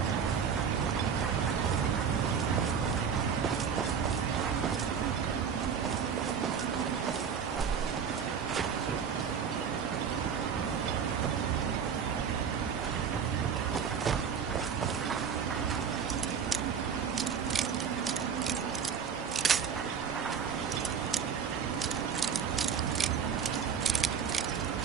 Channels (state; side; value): quieter; left; 7.0 dB